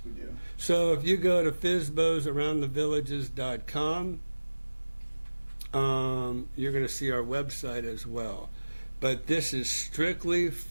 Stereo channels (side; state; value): both; inverted; correlation -1.00